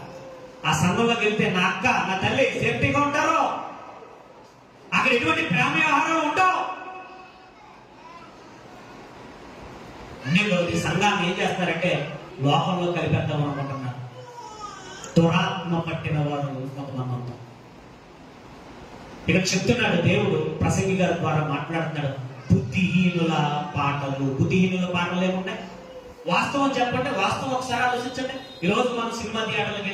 ఆ సంఘంలోకి వెళ్తే నా అక్క, నా తల్లి సేఫ్టీగా ఉంటారు. అక్కడ ఎటువంటి ప్రేమ వ్యవహారాలు ఉండవు. అన్ని సంఘాన్ని ఏం చేస్తారంటే లోకంలో కలిపేద్దాం అనుకుంటున్నారు. దురాత్మ పట్టిన వాడు కొంతమంది ఉంటారు. ఇక్కడ చెప్తున్నాడు దేవుడు, ప్రసంగి గారి ద్వారా మాట్లాడుతున్నాడు. బుద్ధిహీనుల పాటలు. బుద్ధిహీనుల పాటలు ఏమున్నాయి? వాస్తవం చెప్పండి, వాస్తవం ఒకసారి ఆలోచించండి. ఈరోజు మనం సినిమా థియేటర్లకు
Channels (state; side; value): identical; both; correlation 1.00